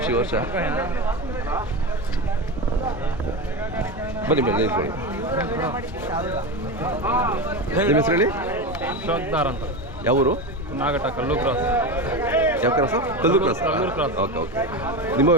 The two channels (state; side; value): normal; both; correlation 0.20